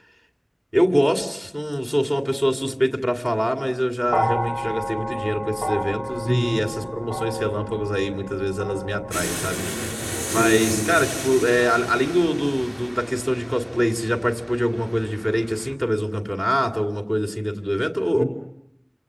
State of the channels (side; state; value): both; identical; correlation 1.00